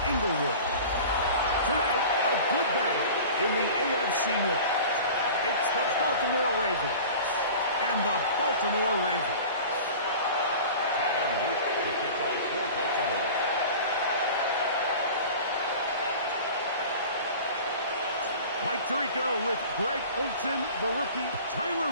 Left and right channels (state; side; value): inverted; both; correlation -0.39